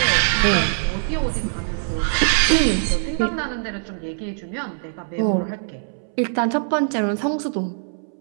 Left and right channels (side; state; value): left; silent; 64 dB below the other